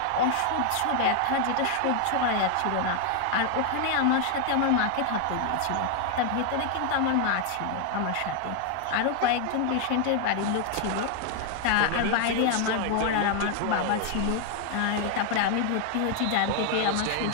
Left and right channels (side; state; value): both; different; correlation 0.00